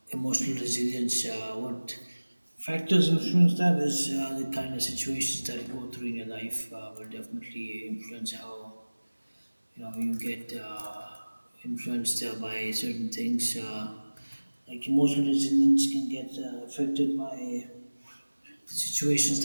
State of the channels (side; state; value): both; inverted; correlation -1.00